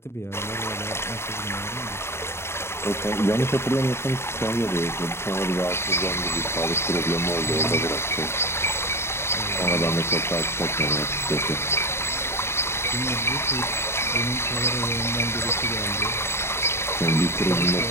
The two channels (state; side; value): late; right; 0.12 ms